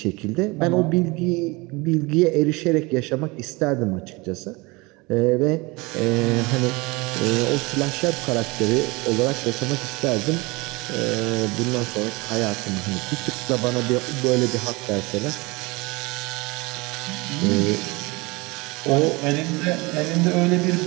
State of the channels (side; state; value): left; quieter; 24.9 dB